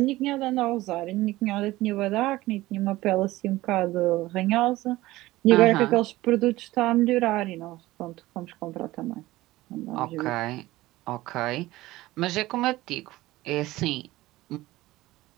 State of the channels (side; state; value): left; quieter; 17.8 dB